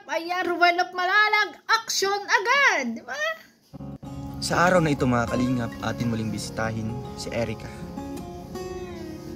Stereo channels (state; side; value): identical; both; correlation 1.00